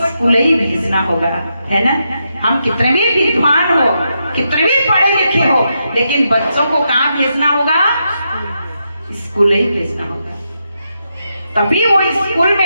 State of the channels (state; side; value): inverted; both; correlation -0.83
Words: ही भेजना होगा, है ना। हम कितने भी विद्वान हो, कितने भी पढ़े लिखे हो, लेकिन बच्चों को कहाँ भेजना होगा? स्कूल ही भेजना होगा। तभी वो स्कूल